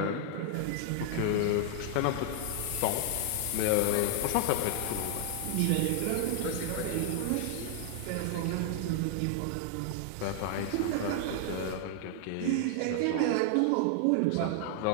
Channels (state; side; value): different; both; correlation 0.00